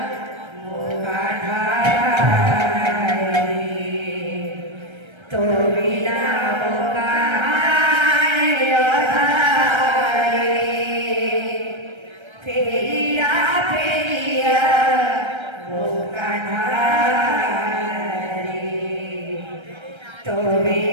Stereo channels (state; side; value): late; left; 1.3 ms